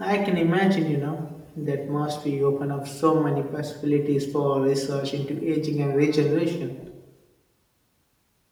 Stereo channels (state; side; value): identical; both; correlation 1.00